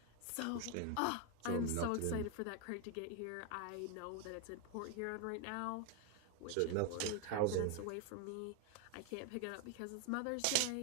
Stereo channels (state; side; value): different; both; correlation 0.00